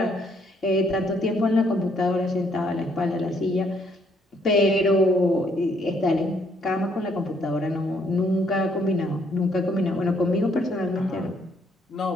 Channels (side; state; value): both; normal; correlation 0.69